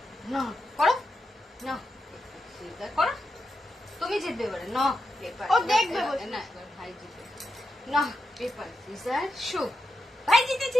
না করো, না করো, তুমি জিতবে এবারে। ন পেপার, ও দেখবে না এবার ভাই জিতবে। না পেপার সিজার শো। ভাই জিতেছি,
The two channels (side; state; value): both; normal; correlation 0.88